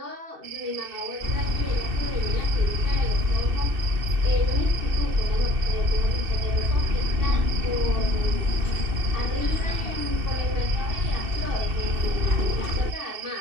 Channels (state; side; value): late; left; 2.7 ms